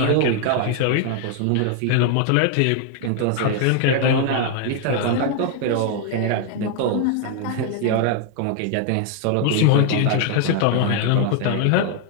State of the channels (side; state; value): both; different; correlation 0.00